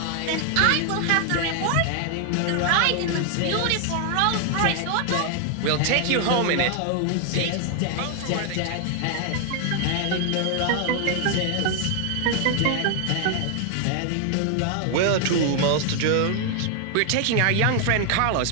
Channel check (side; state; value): both; different; correlation 0.00